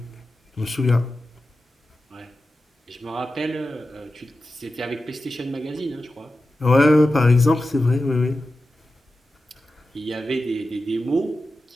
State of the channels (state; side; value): normal; both; correlation 0.92